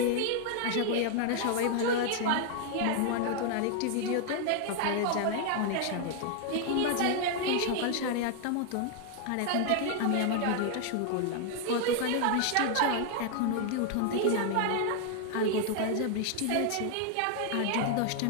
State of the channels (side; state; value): both; different; correlation 0.00